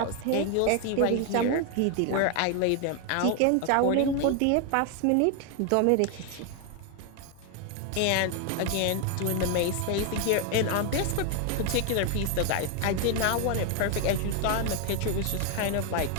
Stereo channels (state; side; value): different; both; correlation 0.01